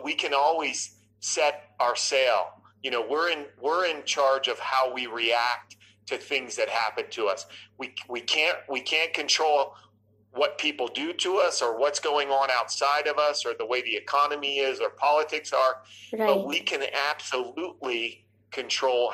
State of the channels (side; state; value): both; identical; correlation 1.00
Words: we can always set our sail. We're in charge of how we react to things that happen to us. We can't control what people do to us or what's going on outside of us or the way the economy is or politics are, but we can absolutely control